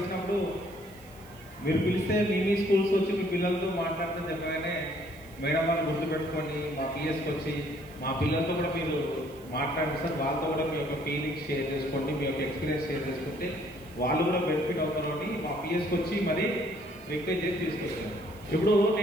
మీరు పిలిస్తే మీ స్కూల్స్ వచ్చి మీ పిల్లలతో మాట్లాడితే చెప్పగానే మేడం వాళ్ళు గుర్తుపెట్టుకొని మా పిఎస్కి వచ్చి మా పిల్లలతో కూడా మీరు మాట్లాడండి సార్, వాళ్ళతో కూడా మీ యొక్క ఫీలింగ్స్ షేర్ చేసుకోండి, మీ యొక్క ఎక్స్పీరియన్స్ షేర్ చేసుకుంటే వాళ్ళు కూడా బెనిఫిట్ అవుతారు అని మా పిఎస్కి వచ్చి మరీ రిక్వెస్ట్ చేసి తీసుకొచ్చాను. ఇప్పుడు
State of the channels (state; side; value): noise; right; hiss, 25 dB below the sound